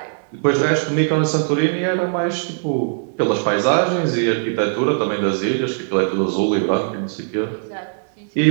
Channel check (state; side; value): silent; left; 66 dB below the other